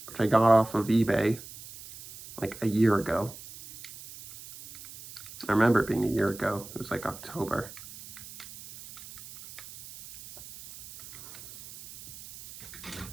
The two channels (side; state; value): right; noise; hiss, 16 dB below the sound